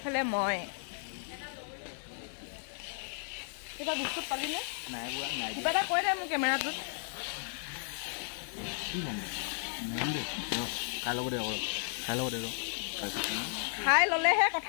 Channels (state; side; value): silent; right; 55 dB below the other